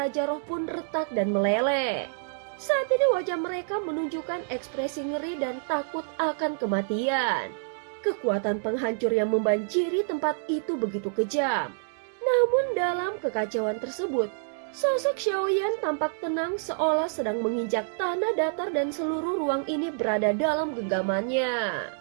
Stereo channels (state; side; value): silent; left; digital silence